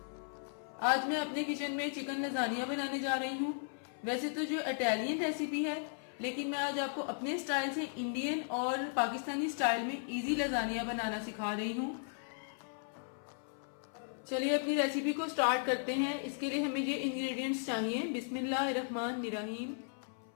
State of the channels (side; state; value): right; silent; 54 dB below the other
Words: आज मैं अपने किचन में चिकन लजानिया बनाने जा रही हूँ। वैसे तो जो इटालियन रेसिपी है, लेकिन मैं आज आपको अपने स्टाइल से इंडियन और पाकिस्तानी स्टाइल में इजी लजानिया बनाना सिखा रही हूँ। चलिए अपनी रेसिपी को स्टार्ट करते हैं। इसके लिए हमें ये इंग्रेडिएंट्स चाहिए। बिस्मिल्लाहिर्रहमानिर्रहीम।